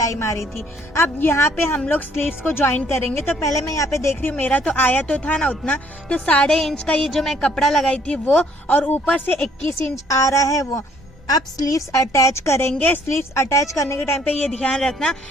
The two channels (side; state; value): both; normal; correlation 0.63